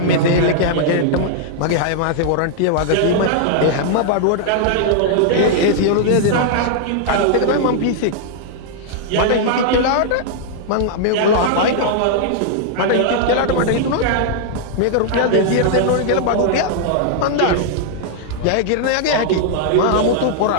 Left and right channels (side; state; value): both; different; correlation -0.01